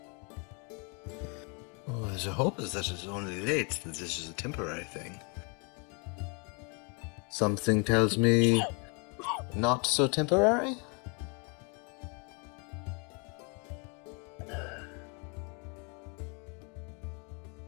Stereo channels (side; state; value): right; quieter; 34.7 dB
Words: Oh, the hope is that it's only late, that this is a temporary thing. Something tells me not so temporary?